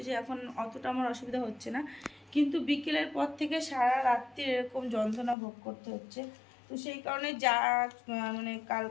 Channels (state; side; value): drops out; right; at 5.4 s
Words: যে এখন অতটা আমার অসুবিধা হচ্ছে না, কিন্তু বিকেলের পর থেকে সারা রাত্রি এরকম যন্ত্রণা ভোগ করতে হচ্ছে। তো সেই কারণে যা মানে